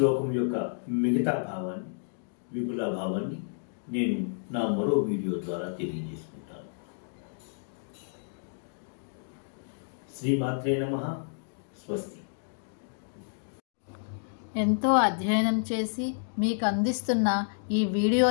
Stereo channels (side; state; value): right; silent; digital silence